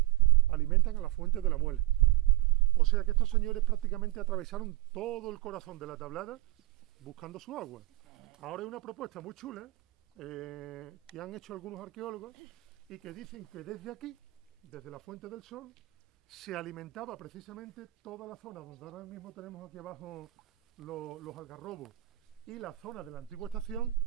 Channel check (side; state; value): left; quieter; 18.5 dB